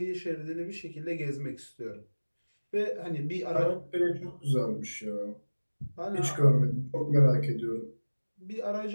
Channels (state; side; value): inverted; both; correlation -1.00